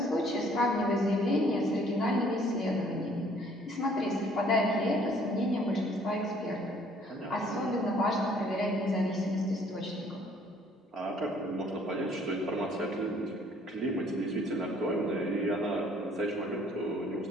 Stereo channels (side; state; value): both; normal; correlation 0.60